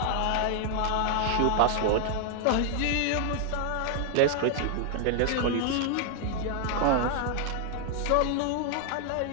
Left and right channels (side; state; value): both; different; correlation 0.00